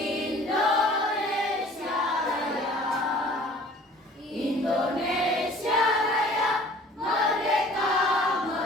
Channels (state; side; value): normal; both; correlation 0.49